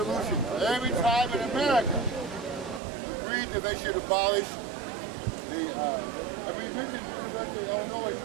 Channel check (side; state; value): left; drops out; at 2.8 s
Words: Every tribe in America agreed that they should abolish the, we mentioned the University of Illinois